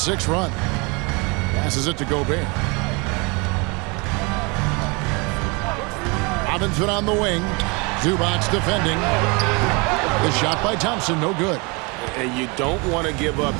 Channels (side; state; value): left; quieter; 29.2 dB